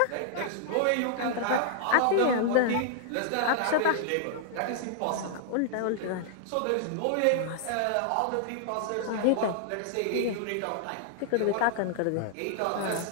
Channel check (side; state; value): both; different; correlation -0.01